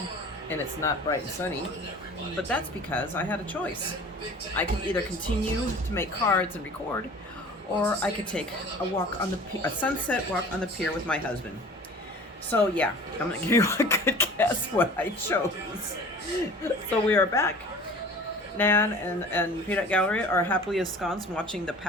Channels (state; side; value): normal; both; correlation 0.44